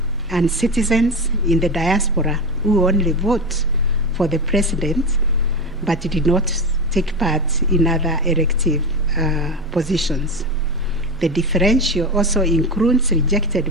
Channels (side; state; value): both; normal; correlation 0.20